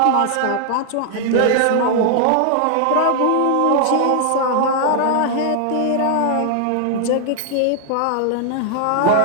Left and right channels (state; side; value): different; both; correlation 0.00